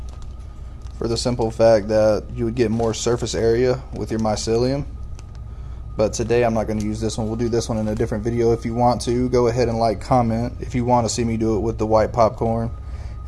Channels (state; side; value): identical; both; correlation 1.00